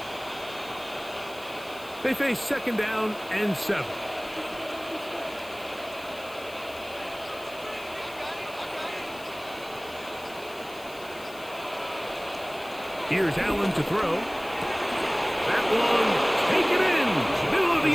They face 2nd down and 7. Here's Allen to throw. That one, take it in, middle of the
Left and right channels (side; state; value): left; noise; hiss, 20 dB below the sound